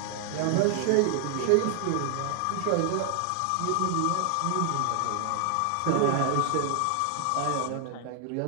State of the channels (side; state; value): both; different; correlation 0.00